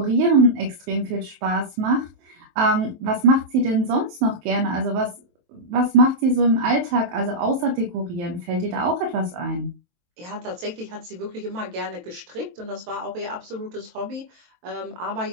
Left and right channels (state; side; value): late; left; 23 ms